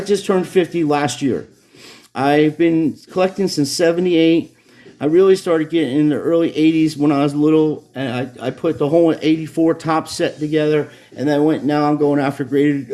turned 50 last year. I've been collecting since 78. I really started getting in the early 80s when I was little, and I put the whole 84 top set together, and now I'm going after graded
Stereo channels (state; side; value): identical; both; correlation 1.00